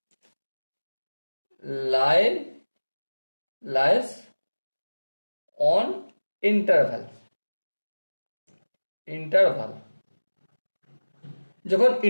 lies on interval, যখন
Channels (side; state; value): both; inverted; correlation -1.00